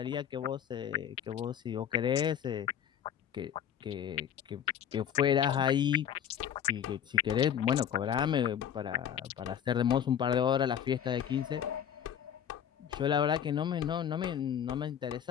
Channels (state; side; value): quieter; right; 9.2 dB